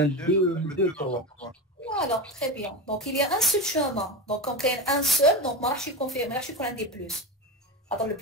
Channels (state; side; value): normal; both; correlation 0.21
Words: 2 2 3. Voilà, très bien. Donc il y a un seul chemin. Donc quand il y a un seul, donc je suis confirmé, je suis qu'on a des plus. Alors le